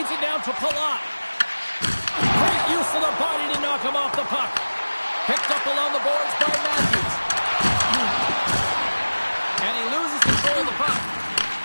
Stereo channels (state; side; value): inverted; both; correlation -1.00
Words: it down to Palat. Great use of the body to knock him off the puck. Picked up along the boards by Matthews. control of the puck.